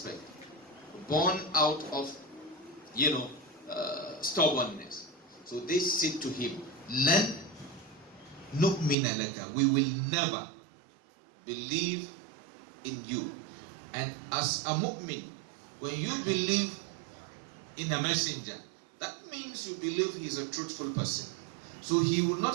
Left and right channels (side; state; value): left; drops out; at 9.0 s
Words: born out of, stubbornness. So they said to him, Lan nu'mina laka, we will never believe in you. And as a mu'min, when you believe in a messenger, that means you believe he is a truthful person. So he will